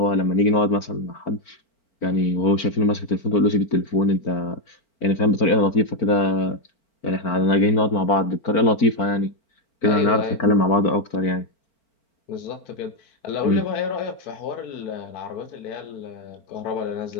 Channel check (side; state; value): right; late; 4.4 ms